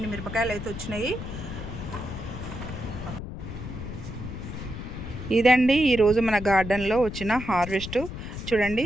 మిరపకాయలు అయితే వచ్చినాయి. ఇదండి ఈరోజు మన గార్డెన్లో వచ్చిన హార్వెస్ట్. చూడండి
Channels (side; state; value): left; noise; rumble, 8 dB below the sound